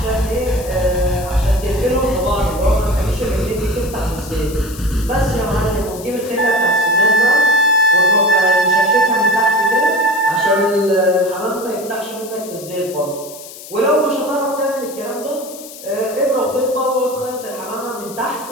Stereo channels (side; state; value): left; noise; hiss, 15 dB below the sound